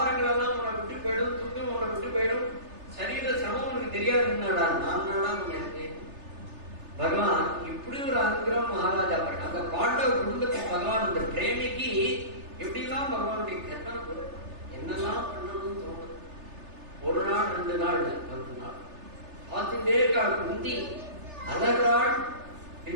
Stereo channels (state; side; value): late; left; 3.3 ms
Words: எல்லாம் உன்னை விட்டு போயிடும், துக்கம் உன்னை விட்டு போயிடும், சரீர சிரமம் உனக்கு தெரியாதுன்னாடா நான் இருக்கேன். பகவான் இப்படி ஒரு அனுகிரகம் மகாராஜா பாரு. அந்த பாண்டவ குடும்பத்துக்கு பகவான் இந்த பிரேமிக்கு எப்படிலாம் பகவானுடைய கற்பனை என்னெல்லாம் பண்ணணும்னு தோணுது. ஒரு நாள் 2 நாள் 10 நாள் பார்த்துட்டே இருக்காள். குந்தி அழகாள்,